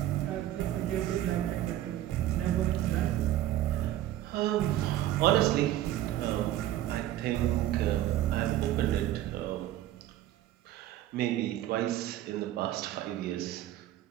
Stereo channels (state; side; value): quieter; left; 13.4 dB